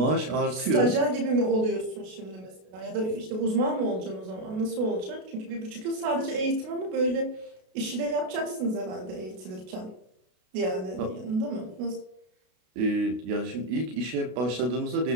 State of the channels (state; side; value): late; left; 32 ms